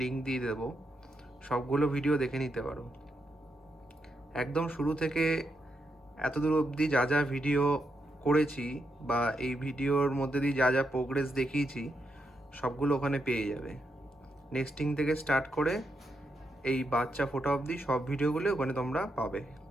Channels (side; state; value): both; normal; correlation 0.82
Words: লিঙ্ক দিয়ে দেবো, সবগুলো ভিডিও দেখে নিতে পারো। একদম শুরু থেকে এতদূর অবধি যা যা ভিডিও করেছি বা এই ভিডিওর মধ্যে দিয়ে যা যা প্রোগ্রেস দেখিয়েছি সবগুলো ওখানে পেয়ে যাবে। নেক্সটিং থেকে স্টার্ট করে এই বাচ্চা ফোটা অবধি সব ভিডিওগুলো ওখানে তোমরা পাবে।